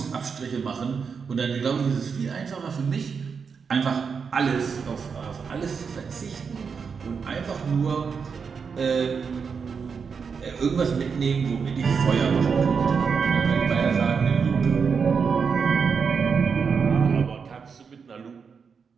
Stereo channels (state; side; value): quieter; left; 5.9 dB